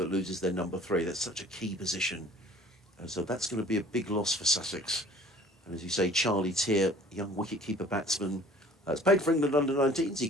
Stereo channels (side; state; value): both; normal; correlation 0.51